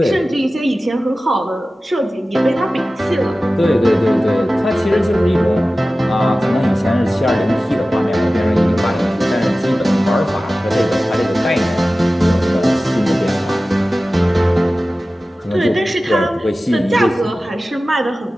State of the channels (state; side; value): normal; both; correlation 0.96